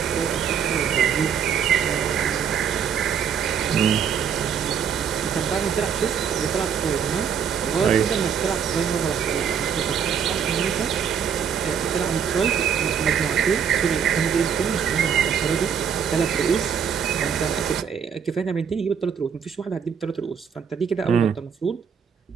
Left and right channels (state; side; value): quieter; left; 7.4 dB